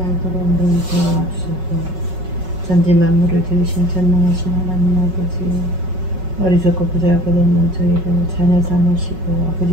알도록 눈 도와주소서. 전지 만물을 지으신 전능하신 하나님 아버지, 어리석고 보잘것없는 저희를 자녀 삼으시고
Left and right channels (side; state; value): left; late; 5.4 ms